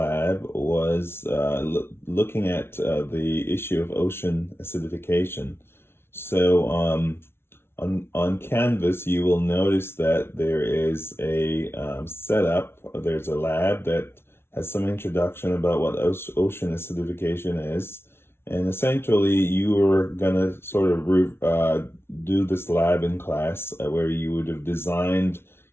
was looking at the issue of ocean acidification. So on Canvas, you will notice that there is a setup. There's a lab that has some introduction about what ocean acidification is. And essentially, you were gonna sort of do this lab in class where you would have designed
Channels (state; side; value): late; right; 0.12 ms